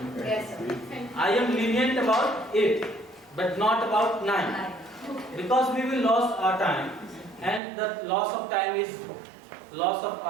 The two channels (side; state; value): left; drops out; at 7.6 s